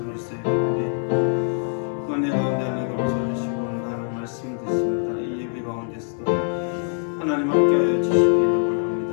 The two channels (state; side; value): silent; right; 63 dB below the other